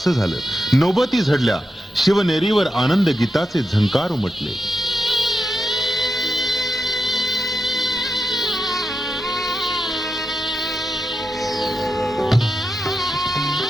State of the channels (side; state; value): both; normal; correlation 0.87